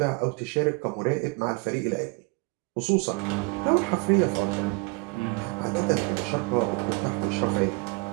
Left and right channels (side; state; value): left; quieter; 28.4 dB